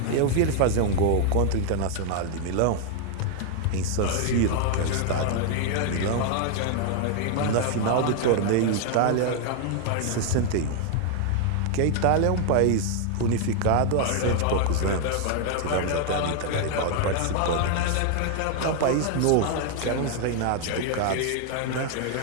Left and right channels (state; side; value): different; both; correlation 0.00